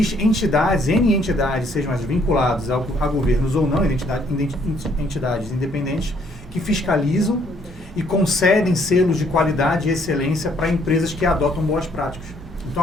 N entidades, sejam as vinculadas a governos ou não, entidades independentes, que fiscalizam e concedem selos de qualidade e excelência para empresas que adotam boas práticas. Então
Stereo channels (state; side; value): normal; both; correlation 0.66